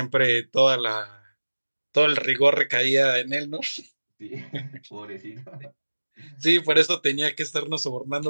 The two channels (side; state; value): both; inverted; correlation -1.00